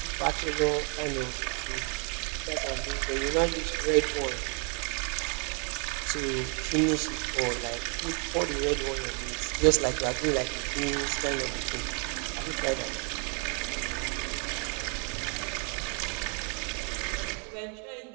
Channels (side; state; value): left; quieter; 38.2 dB